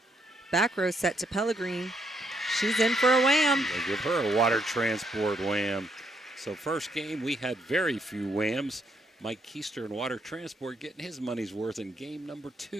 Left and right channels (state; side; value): normal; both; correlation 0.74